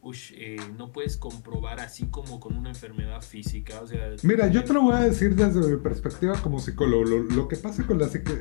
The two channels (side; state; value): right; silent; 61 dB below the other